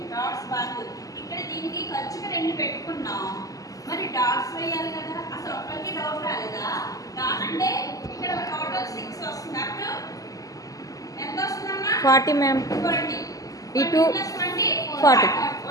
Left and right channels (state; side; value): late; right; 0.17 ms